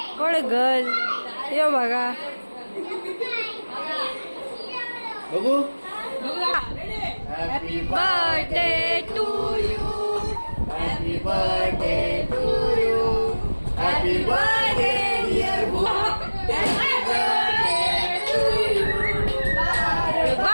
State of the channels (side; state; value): both; inverted; correlation -1.00